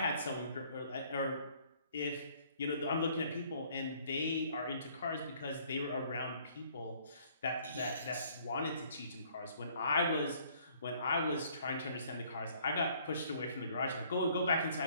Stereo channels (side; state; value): both; inverted; correlation -0.61